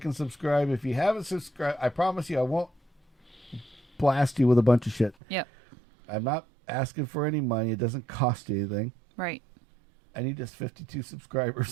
and subscribe. If you haven't subscribed, I promise you I won't blast you with a bunch of shit. Yep. I'm not asking for any money. It doesn't cost you anything. Right. I need just 52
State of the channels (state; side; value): drops out; left; at 5.2 s